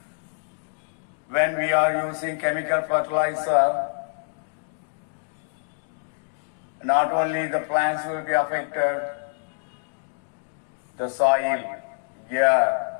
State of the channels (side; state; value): right; silent; digital silence